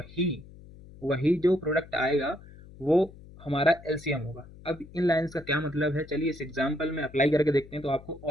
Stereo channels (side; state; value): left; noise; hum, 19 dB below the sound